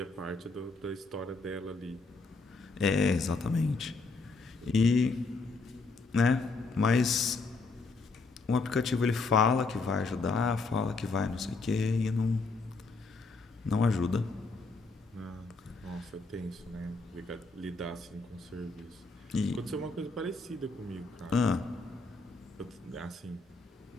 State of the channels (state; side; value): quieter; right; 3.8 dB